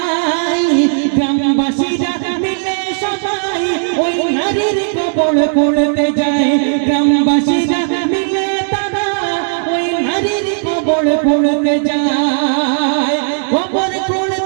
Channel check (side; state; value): left; silent; digital silence